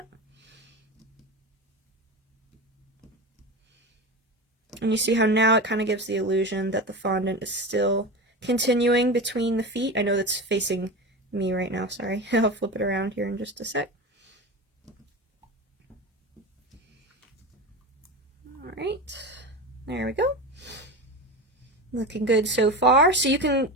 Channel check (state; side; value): normal; both; correlation 0.25